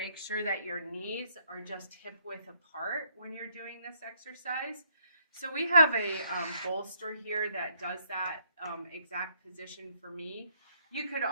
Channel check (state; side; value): inverted; both; correlation -0.69